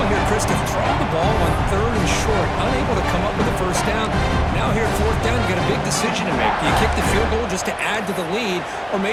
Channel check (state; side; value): identical; both; correlation 1.00